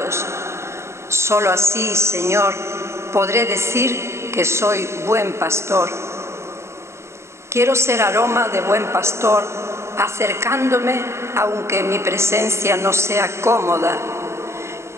Solo así, Señor, podré decir que soy buen pastor. Quiero ser aroma de buen pastor, acercándome aunque mi presencia no sea cómoda,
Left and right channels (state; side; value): late; left; 0.13 ms